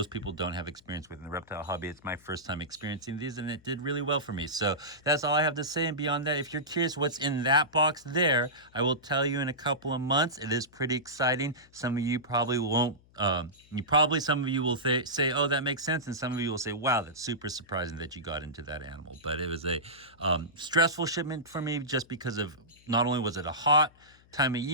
people don't have experience with in the reptile hobby. It's my first time experiencing these, and it did really well for me. So that's all I have to say. And beyond that, if you're curious what's in that box there, I will tell you in a couple of months. It is pretty exciting. Some of you probably won't. Some of you will say, oh, that makes sense. And some of you will say, wow, that's super surprising that you got into that animal. But it was a stressful shipment for me, just because of, not only was it a hot time of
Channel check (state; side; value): noise; left; hum, 29 dB below the sound